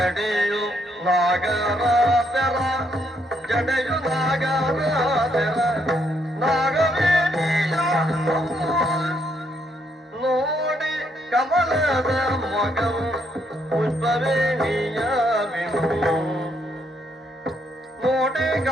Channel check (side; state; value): both; normal; correlation 0.74